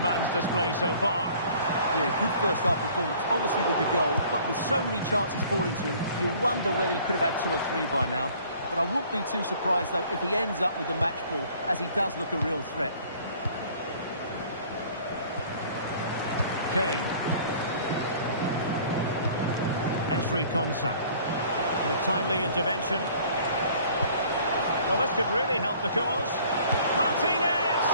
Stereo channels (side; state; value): both; inverted; correlation -0.53